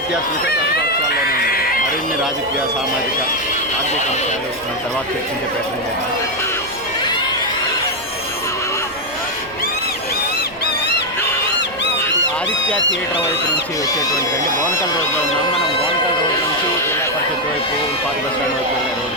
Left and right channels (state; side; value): noise; right; rumble, 22 dB below the sound